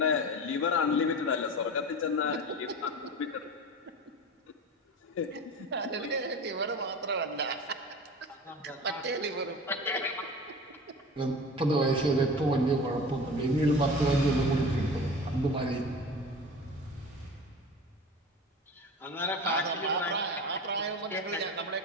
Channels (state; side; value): normal; both; correlation 0.34